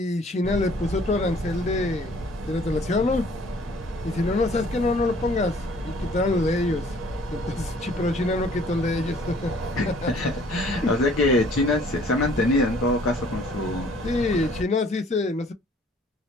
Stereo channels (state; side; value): normal; both; correlation 0.56